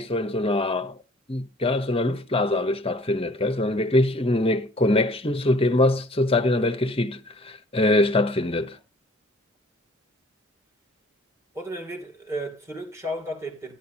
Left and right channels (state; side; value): normal; both; correlation 0.54